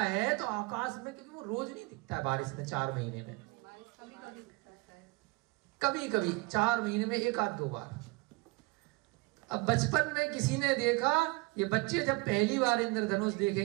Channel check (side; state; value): left; quieter; 25.6 dB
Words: तो आकाश में, क्योंकि वो रोज नहीं दिखता है बारिश में, 4 महीने में कभी कभी 4 महीने में 1 आध 2 बार। अब बचपन में किसी ने देखा, ये बच्चे जब पहली बार इंद्रधनुष